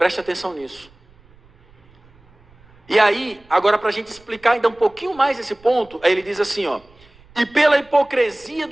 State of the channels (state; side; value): noise; right; rumble, 29 dB below the sound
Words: atenção nisso. E aí, agora para a gente explicar ainda um pouquinho mais esse ponto, aí ele diz assim, e pela hipocrisia